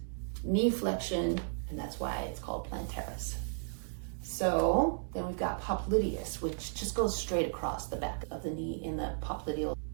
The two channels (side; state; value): left; silent; digital silence